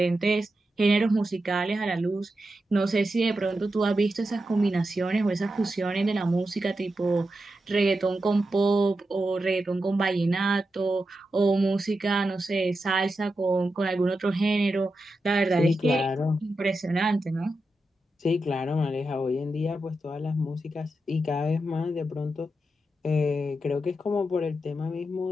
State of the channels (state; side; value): normal; both; correlation 0.89